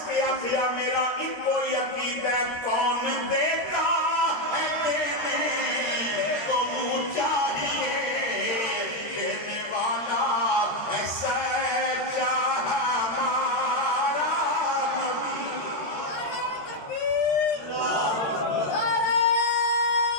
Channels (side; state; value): right; late; 13 ms